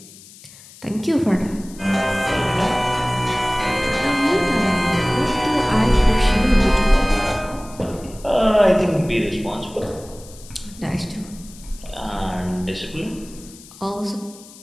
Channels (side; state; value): left; noise; hiss, 20 dB below the sound